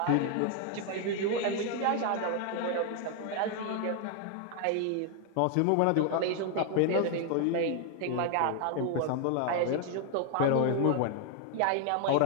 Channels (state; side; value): different; both; correlation 0.00